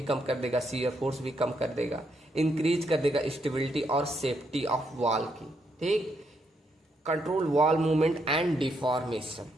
कम कर देगा, शियर फोर्स भी कम कर देगा। इंक्रीज कर देगा स्टेबिलिटी और सेफ्टी ऑफ वॉल की। ठीक, control wall movement and deformation,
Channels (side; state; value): both; normal; correlation 0.77